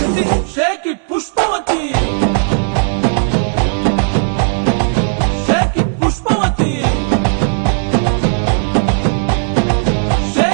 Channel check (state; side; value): silent; left; digital silence